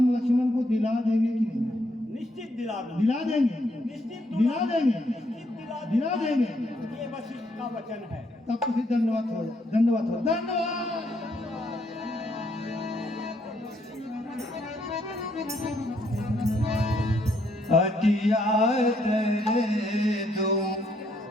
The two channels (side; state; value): both; normal; correlation 0.73